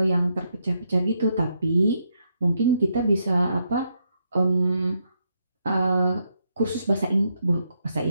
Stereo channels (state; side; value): inverted; both; correlation -0.79